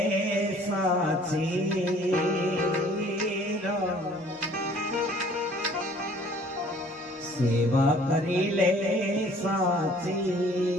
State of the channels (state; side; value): normal; both; correlation 0.55